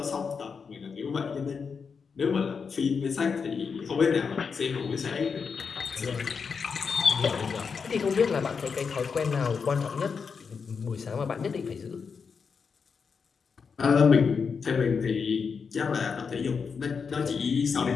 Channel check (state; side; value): quieter; right; 5.7 dB